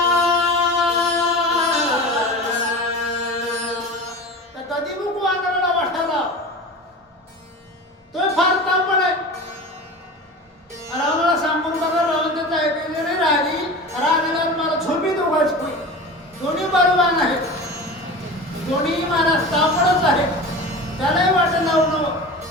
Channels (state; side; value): normal; both; correlation 0.32